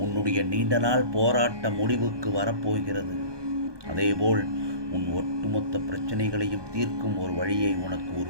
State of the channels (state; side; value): late; left; 1.2 ms